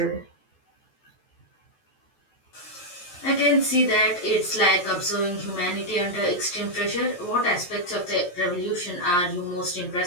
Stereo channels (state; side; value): late; right; 11 ms